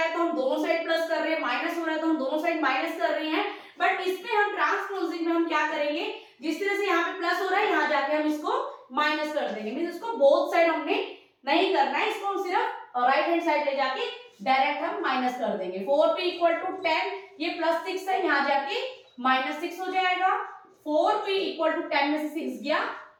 तो हम दोनों साइड प्लस कर रहे हैं, माइनस हो रहा है तो हम दोनों साइड माइनस कर रहे हैं। बट इसमें हम ट्रांसपोजिंग में हम क्या करेंगे, जिस तरह से यहाँ पे प्लस हो रहा है, यहाँ जाके हम इसको माइनस कर देंगे। मींस इसको बोथ साइड हमने नहीं करना है, इसको हम सिर्फ राइट हैंड साइड ले जाके डायरेक्ट हम माइनस कर देंगे। 4p = 10, ये +6 है, यहाँ जाके -6 हो जाएगा। 4p = 10 में से 6 गया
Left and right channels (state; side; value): identical; both; correlation 1.00